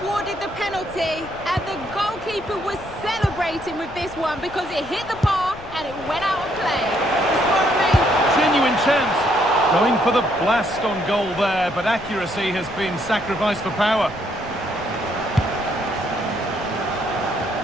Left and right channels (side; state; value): left; noise; rumble, 18 dB below the sound